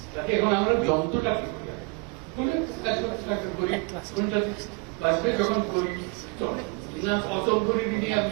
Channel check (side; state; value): left; quieter; 29.8 dB